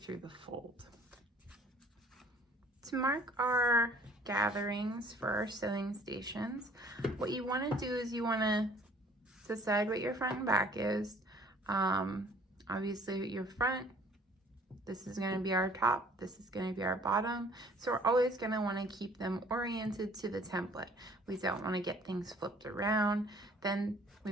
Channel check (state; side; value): normal; both; correlation 0.55